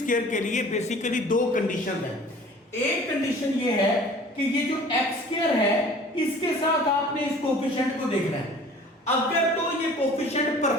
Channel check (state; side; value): normal; both; correlation 0.47